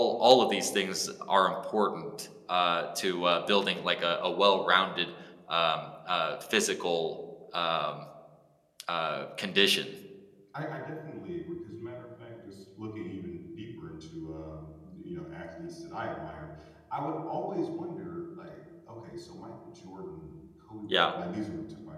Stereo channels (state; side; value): identical; both; correlation 1.00